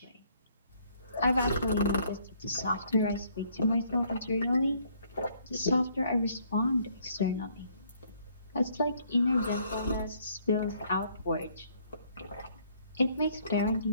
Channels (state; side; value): inverted; both; correlation -0.64